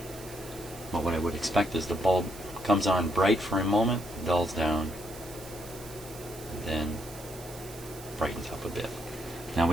But what I would expect is the bulb comes on bright for a moment, dulls down, then brightens up a bit. Now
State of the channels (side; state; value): right; noise; hiss, 16 dB below the sound